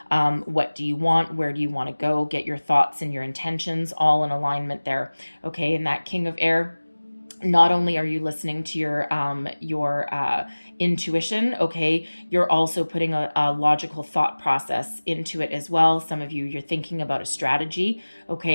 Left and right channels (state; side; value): inverted; both; correlation -1.00